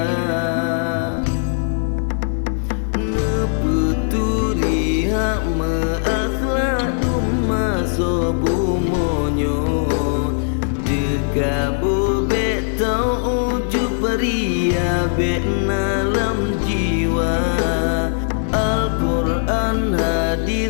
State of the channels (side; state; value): right; silent; 60 dB below the other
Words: ne peturi hak meakhlak umma sobu monyo. Dekabu betau uju peria bet nalam jiwa. Al-Quran